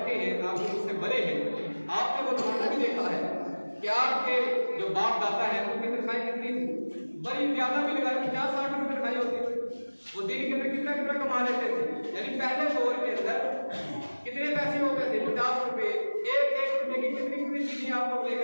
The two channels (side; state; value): both; inverted; correlation -1.00